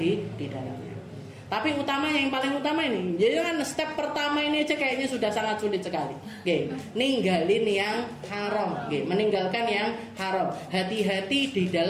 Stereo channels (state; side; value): identical; both; correlation 1.00